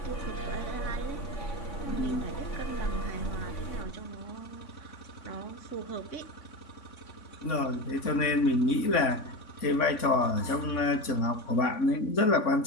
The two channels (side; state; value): right; late; 3.5 ms